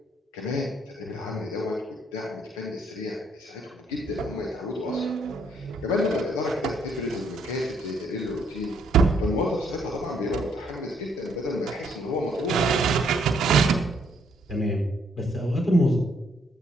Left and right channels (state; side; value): normal; both; correlation 0.69